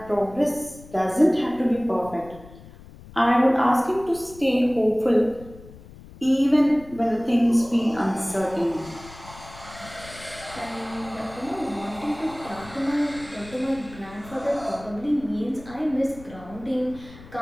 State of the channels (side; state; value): left; noise; rumble, 19 dB below the sound